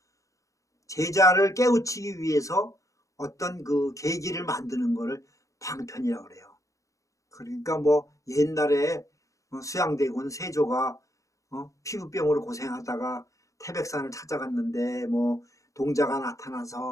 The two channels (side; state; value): right; late; 0.16 ms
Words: 제자를 깨우치기 위해서 어떤 그 계기를 만드는 거를 방편이라고 그래요. 그러니까 뭐 옛날에 수양대군 세조가 피부병으로 고생하다가 태백산을 찾아갔는데 뭐 동자가